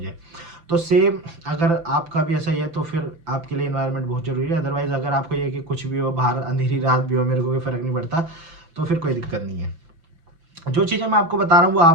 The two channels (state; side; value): late; left; 5.9 ms